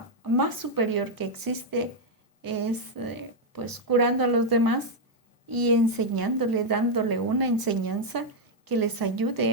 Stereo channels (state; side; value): normal; both; correlation -0.01